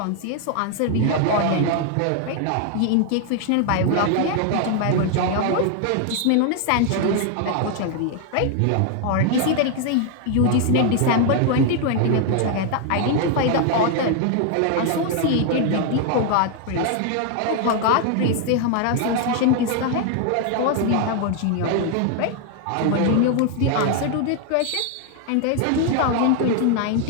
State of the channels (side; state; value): both; different; correlation 0.01